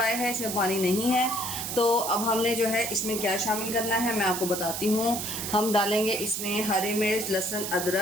है, इसमें पानी नहीं है। तो अब हमने जो है इसमें क्या शामिल करना है मैं आपको बताती हूँ। हम डालेंगे इसमें हरी मिर्च, लहसुन,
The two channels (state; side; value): noise; right; hiss, 4 dB below the sound